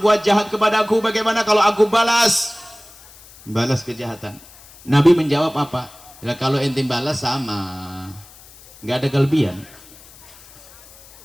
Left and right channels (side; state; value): left; noise; hiss, 23 dB below the sound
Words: jahat kepadaku, bagaimana kalau aku balas kejahatan? Nabi menjawab apa? Ya, kalau ente balas sama, nggak ada kelebihan.